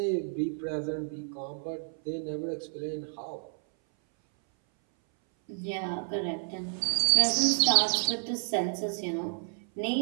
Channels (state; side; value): silent; left; 58 dB below the other